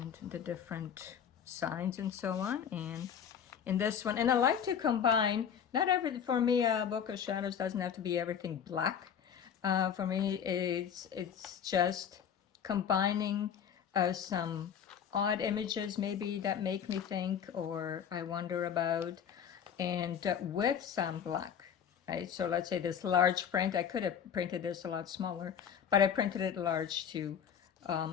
the different signs and so on. And in this one, and I like to combine, not every, for me a book of shadows doesn't have to be everything black. For me it's just combining some odd images maybe that make me think or I wonder about, and with some black, right? So let's say this large print, I could have printed this a lot smaller, but I printed it large to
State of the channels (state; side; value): quieter; right; 8.1 dB